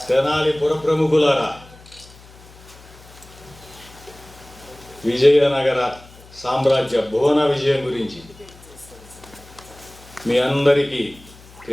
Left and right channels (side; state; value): left; noise; hum, 22 dB below the sound